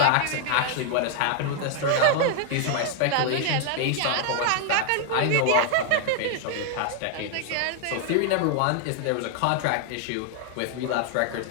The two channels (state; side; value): different; both; correlation 0.00